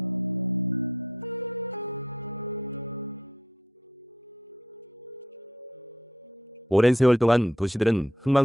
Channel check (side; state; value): both; normal; correlation 0.69